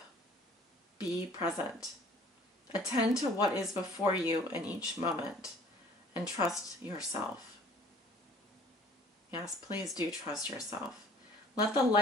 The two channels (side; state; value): both; normal; correlation 0.52